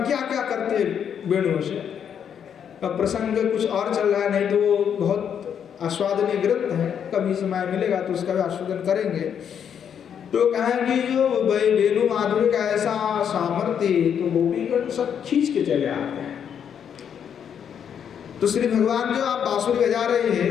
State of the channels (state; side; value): quieter; right; 8.2 dB